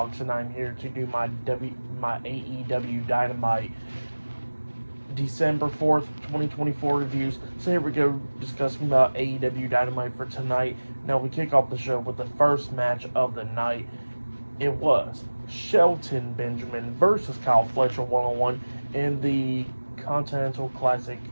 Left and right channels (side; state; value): both; inverted; correlation -1.00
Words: and I'm here to do my AEW Dynamite December 4th, 2024 reviews. So here we go, discussing about AEW Dynamite for tonight. Now we kick off the show with the first match of the night. It was Shelton Benjamin versus Kyle Fletcher one-on-one in the Continental Classic